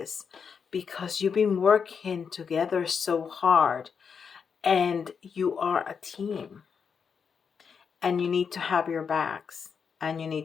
because you've been working together so hard and you are a team. And you need to have your backs and you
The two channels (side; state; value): right; quieter; 6.3 dB